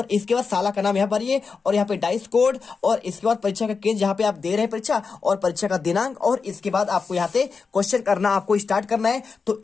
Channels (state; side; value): quieter; right; 5.0 dB